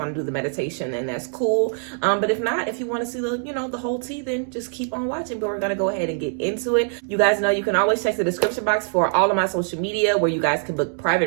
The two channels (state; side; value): silent; left; 55 dB below the other